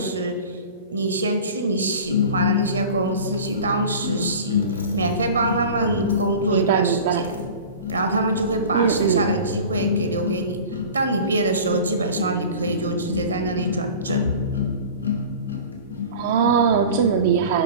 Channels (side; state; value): both; inverted; correlation -0.38